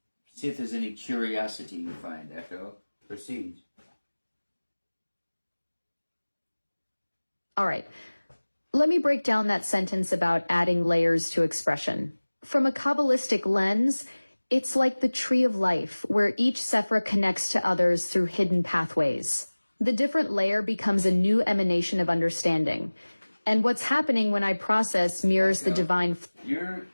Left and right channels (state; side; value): inverted; both; correlation -1.00